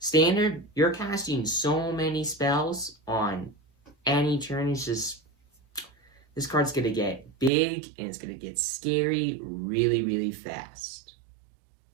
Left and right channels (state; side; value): drops out; left; at 7.5 s